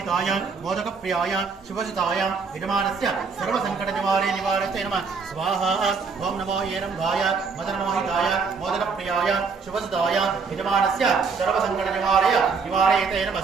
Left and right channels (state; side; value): quieter; left; 5.1 dB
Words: मोदकप्रियाय शुभजिताय यजमानस्य सर्वसङ्कटनिवारे निवारिते नमः स्वाहा ओं नमो ऐरम्भाय मदनमोहिताय मोदकप्रियाय शुभजिताय यजमानस्य सर्वसङ्कटनिवारय निवारयते